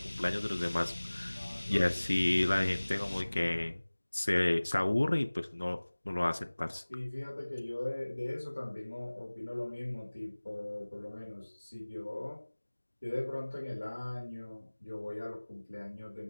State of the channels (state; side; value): inverted; both; correlation -1.00